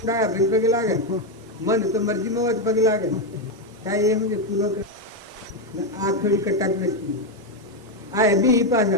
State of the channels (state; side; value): normal; both; correlation 0.06